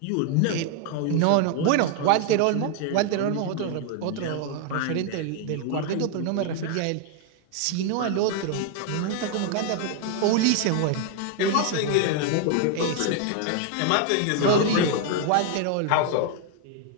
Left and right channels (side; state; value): both; different; correlation 0.01